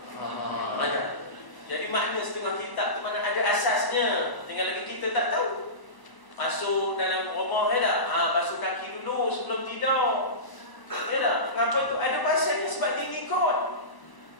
mana. Jadi makna setengah kitab tu mana ada asasnya. Tinggal lagi kita tak tahu. Masuk dalam rumah basuh kaki dulu sebelum tidur. Kenapa tu? Ada pasalnya sebab dia ikut.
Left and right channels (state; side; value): late; right; 1.0 ms